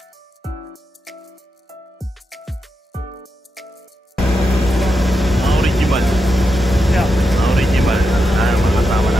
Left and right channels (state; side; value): normal; both; correlation 0.86